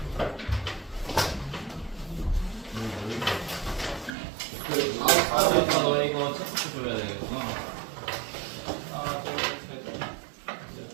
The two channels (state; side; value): drops out; left; at 4.1 s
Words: 너 이거 체크 줘야 되겠구나. 하나, 둘, 셋, 넷,